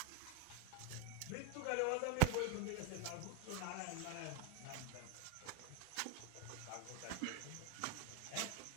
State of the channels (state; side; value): different; both; correlation 0.01